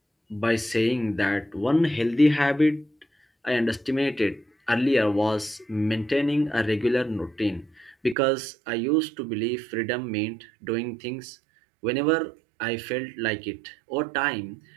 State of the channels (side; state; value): left; drops out; at 8.2 s